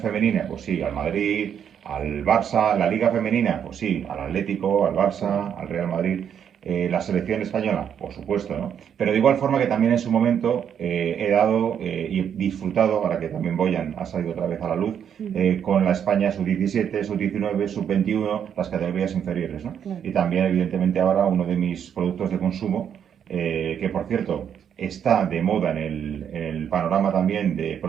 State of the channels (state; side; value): quieter; left; 8.5 dB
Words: pues sí, al Madrid, al Barça, la Liga femenina, pues sí, al Atlético, al Barça, al Real Madrid. La selección española, por supuesto, ¿no? Pero de igual forma que también en su momento he dado y disfrutado, ahora que también Boyan ha salido otra vez a la luz, con la España sub-17, sub-19, sub-21, las categorías inferiores, ¿no? Claro. Y también, evidentemente, ahora uno de mis productos de consumo, que por cierto está de moda en el panorama también de